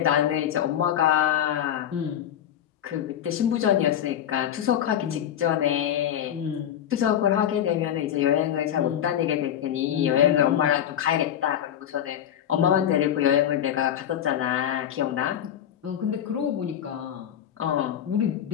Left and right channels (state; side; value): quieter; right; 10.3 dB